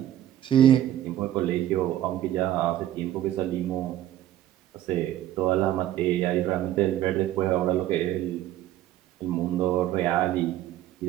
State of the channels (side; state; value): left; quieter; 12.6 dB